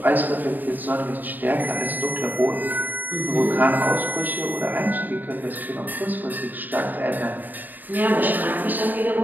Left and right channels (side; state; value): left; late; 0.087 ms